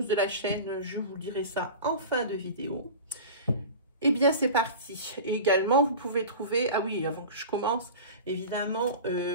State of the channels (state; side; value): inverted; both; correlation -0.33